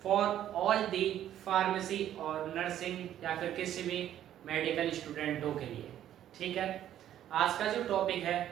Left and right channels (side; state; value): left; quieter; 11.4 dB